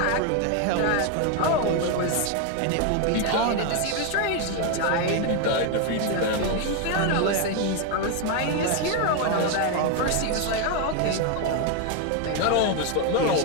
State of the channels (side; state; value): both; different; correlation 0.01